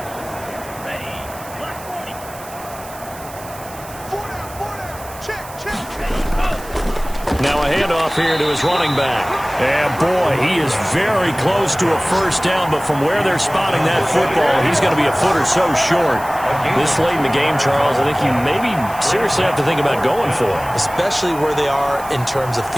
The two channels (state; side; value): noise; right; hiss, 17 dB below the sound